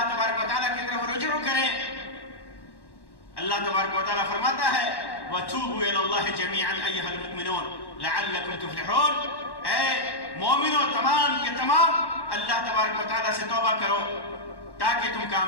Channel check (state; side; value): late; right; 1.1 ms